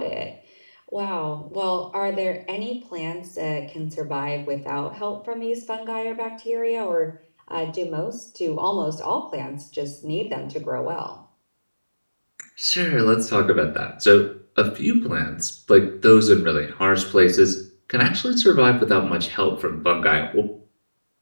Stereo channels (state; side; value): inverted; both; correlation -1.00